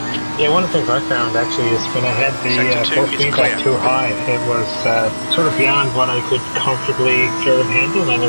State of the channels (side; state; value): both; inverted; correlation -1.00